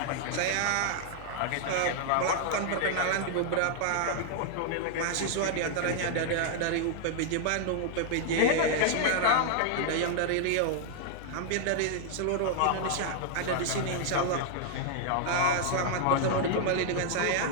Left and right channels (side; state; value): both; different; correlation -0.01